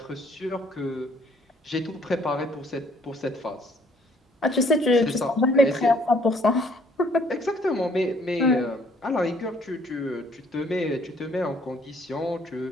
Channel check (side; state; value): both; normal; correlation 0.62